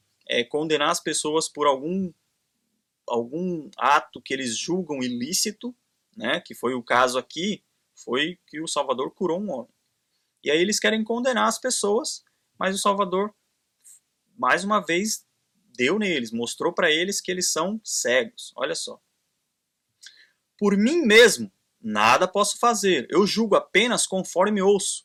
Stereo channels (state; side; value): identical; both; correlation 1.00